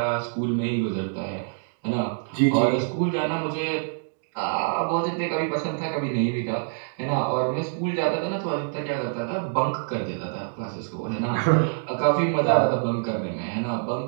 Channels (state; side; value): silent; left; digital silence